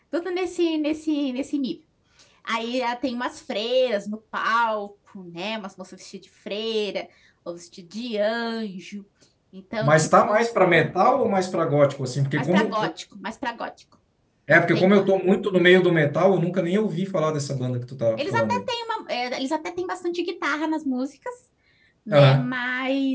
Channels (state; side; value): identical; both; correlation 1.00